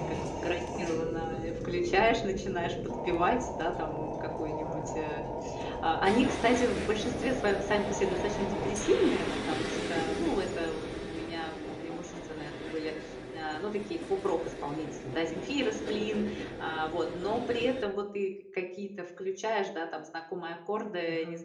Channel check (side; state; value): both; identical; correlation 1.00